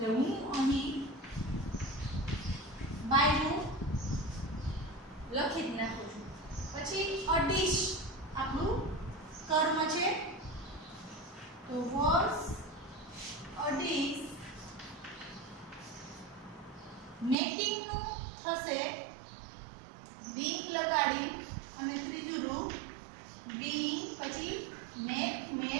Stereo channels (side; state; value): left; drops out; at 17.4 s